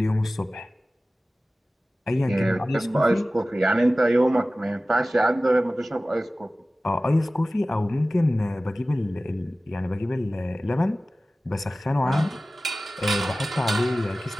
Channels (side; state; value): both; normal; correlation 0.96